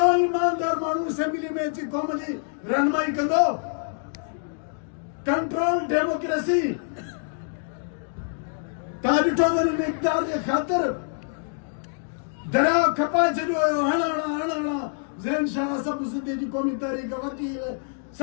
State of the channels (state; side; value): silent; right; digital silence